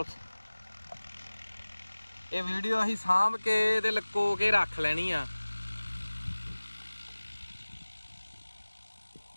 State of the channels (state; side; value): inverted; both; correlation -1.00